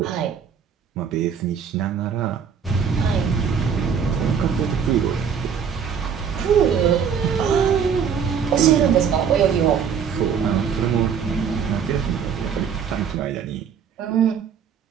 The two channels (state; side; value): quieter; left; 7.1 dB